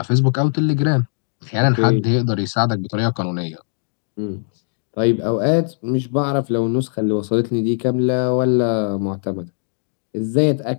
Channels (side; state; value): right; silent; digital silence